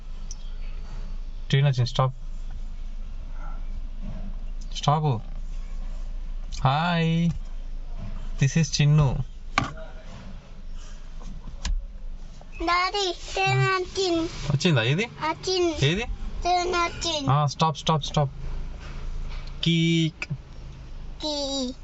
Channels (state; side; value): identical; both; correlation 1.00